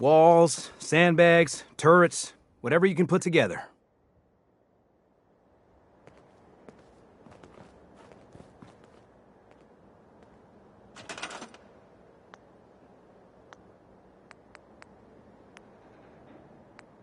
sandbags, turrets, whatever you can put together.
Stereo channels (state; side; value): identical; both; correlation 1.00